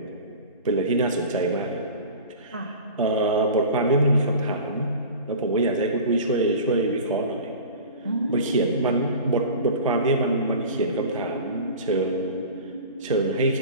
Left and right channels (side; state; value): both; inverted; correlation -0.37